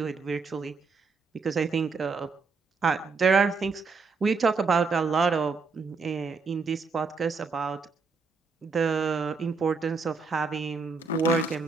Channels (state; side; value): quieter; left; 4.5 dB